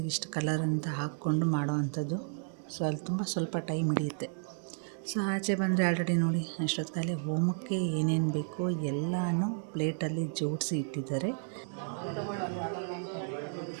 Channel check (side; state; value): left; silent; 56 dB below the other